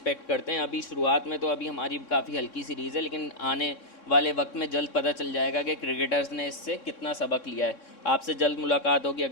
करते हैं। अभी शुरुआत में तो अभी हमारी काफ़ी हल्की सीरीज़ है, लेकिन आने वाले वक्त में जल्द पता चल जाएगा कि क्रिकेटर्स ने इससे कितना सबक लिया है। आपसे जल्द मुलाकात होगी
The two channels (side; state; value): right; late; 3.6 ms